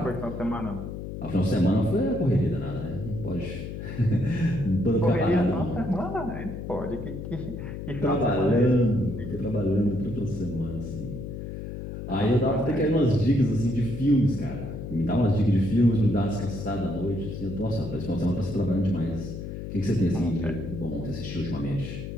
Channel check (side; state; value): left; noise; hum, 8 dB below the sound